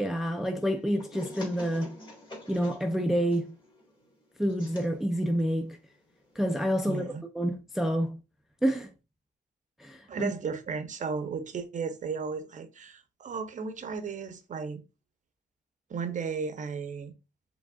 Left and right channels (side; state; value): both; normal; correlation 0.80